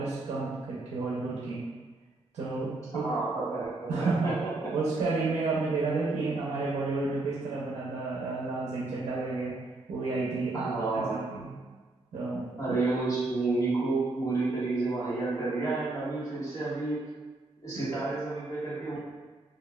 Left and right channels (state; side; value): quieter; left; 3.0 dB